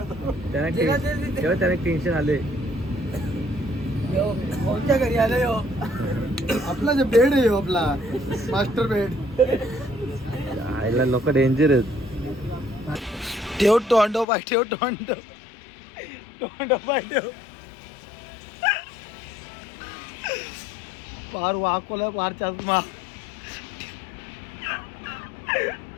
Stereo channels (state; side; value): drops out; right; at 14.2 s